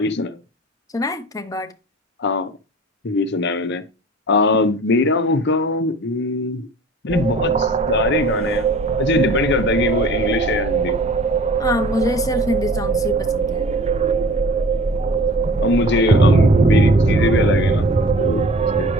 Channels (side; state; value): both; normal; correlation 0.44